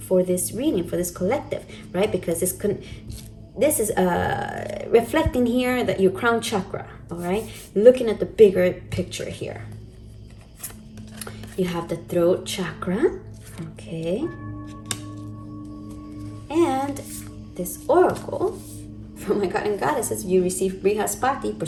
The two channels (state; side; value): identical; both; correlation 1.00